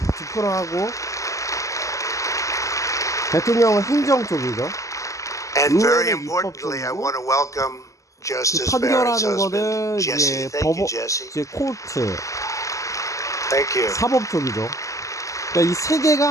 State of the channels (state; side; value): late; right; 0.16 ms